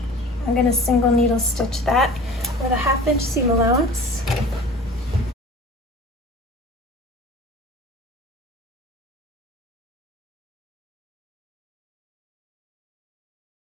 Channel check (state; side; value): normal; both; correlation 0.42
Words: I'm going to single needle stitch that with a 1/2 inch seam allowance.